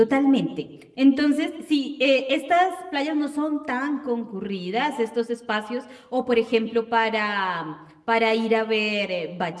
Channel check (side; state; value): both; identical; correlation 1.00